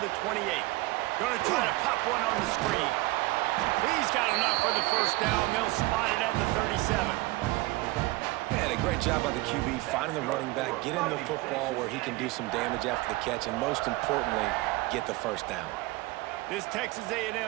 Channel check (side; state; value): left; quieter; 21.1 dB